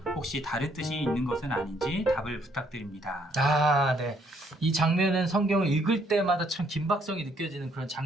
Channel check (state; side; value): normal; both; correlation 0.68